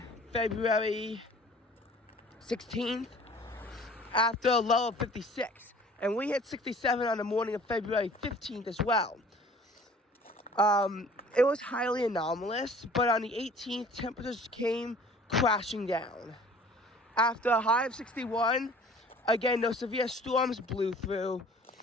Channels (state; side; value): normal; both; correlation 0.50